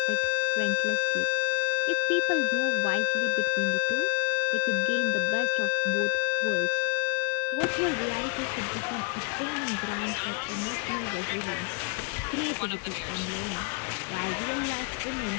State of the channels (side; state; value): right; quieter; 33.4 dB